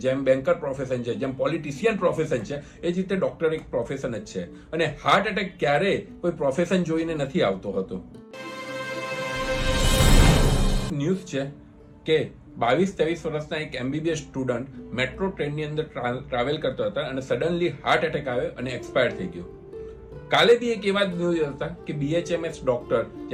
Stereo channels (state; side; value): identical; both; correlation 1.00